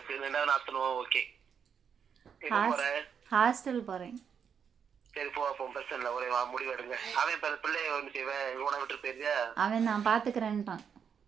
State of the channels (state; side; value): quieter; left; 7.2 dB